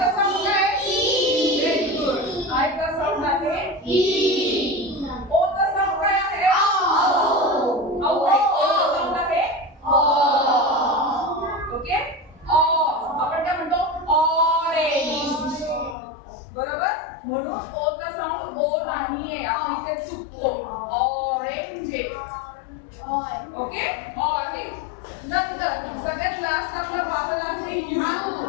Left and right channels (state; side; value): drops out; right; at 16.0 s